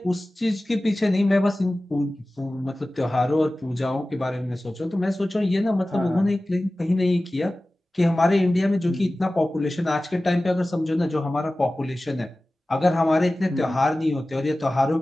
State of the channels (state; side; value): normal; both; correlation 0.96